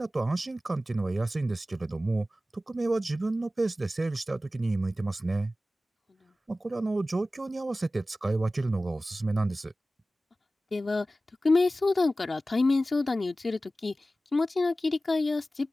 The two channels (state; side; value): normal; both; correlation 0.95